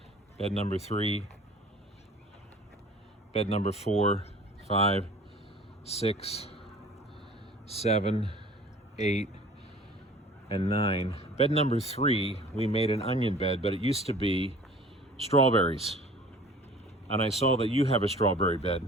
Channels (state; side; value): normal; both; correlation 0.47